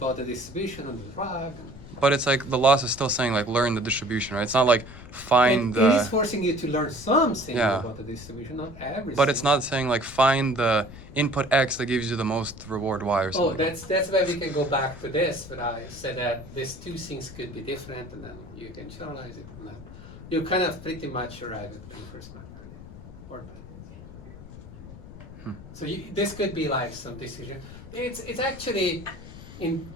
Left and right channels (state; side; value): noise; left; rumble, 15 dB below the sound